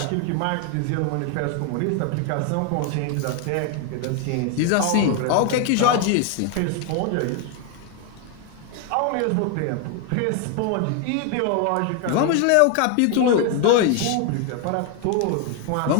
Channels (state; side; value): different; both; correlation 0.01